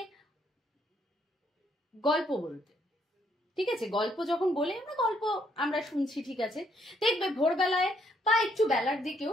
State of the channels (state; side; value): normal; both; correlation 0.70